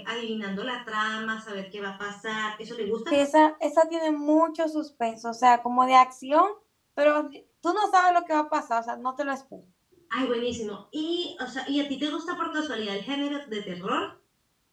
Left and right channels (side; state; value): both; identical; correlation 1.00